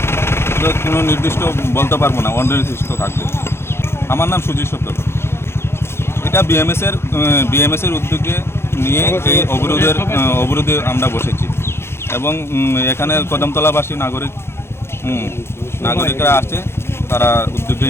কোনো নির্দিষ্ট বলতে পারবো না, অনির্দিষ্ট থাকবে। আমার নাম সুজিত সত্তর। এটা বিএমএসের উদ্যোগে নিয়ে এই অবরোধে আমরা বসেছি এবং এখানে কদমতলাবাসী নাগরিকরা আসছে, তারা উদ্যোগে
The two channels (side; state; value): right; late; 0.12 ms